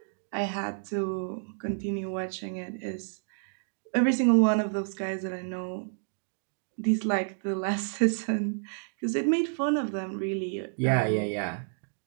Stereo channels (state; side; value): silent; left; digital silence